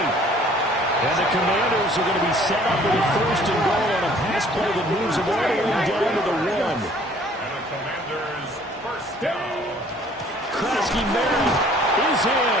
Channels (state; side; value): normal; both; correlation 0.55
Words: And the Commanders are going to be set up with a 1st and goal on a pass play that moves them all the way down to the 1. And the Commanders' 1st down. Crisky-Barrett is